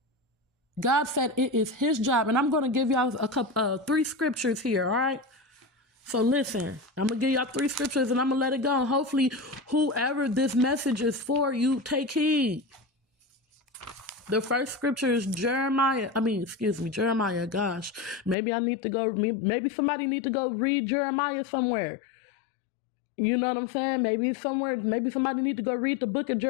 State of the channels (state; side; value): drops out; right; at 18.4 s